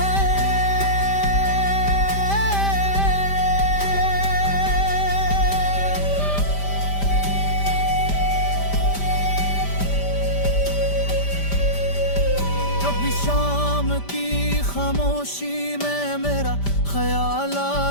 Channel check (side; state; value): right; late; 5.1 ms